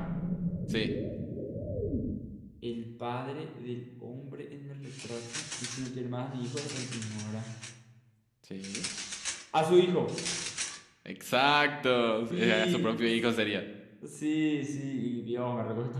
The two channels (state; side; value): identical; both; correlation 1.00